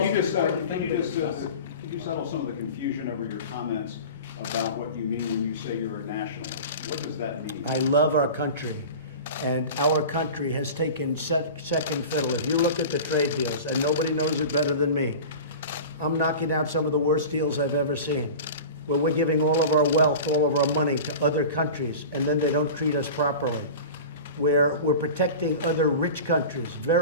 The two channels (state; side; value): inverted; both; correlation -0.34